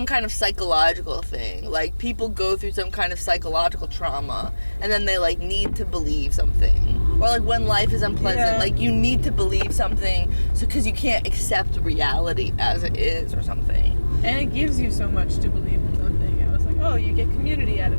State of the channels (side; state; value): both; inverted; correlation -1.00